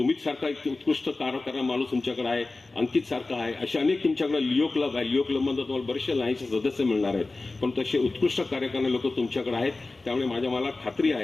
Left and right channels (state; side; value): quieter; right; 3.4 dB